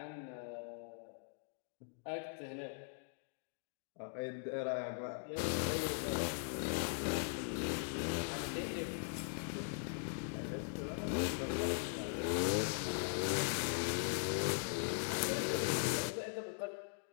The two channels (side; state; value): right; silent; digital silence